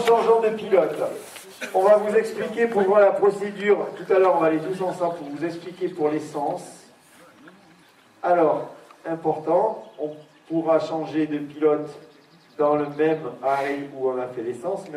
de pilote. On va vous expliquer pour voir la procédure. Tout à l'heure, on va aller tous ensemble pour vous expliquer pour l'essence. Alors, important, on pourra changer de pilote dans le même arrêt où on a fait l'essence,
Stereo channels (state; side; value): identical; both; correlation 1.00